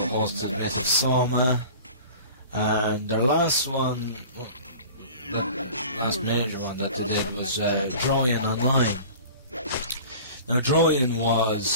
Mythic Soma, and their last one, the last major one that they did was Trojan Online. Now Trojan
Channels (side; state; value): both; inverted; correlation -0.41